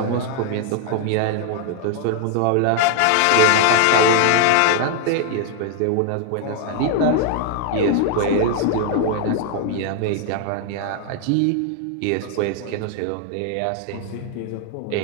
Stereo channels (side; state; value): both; different; correlation 0.00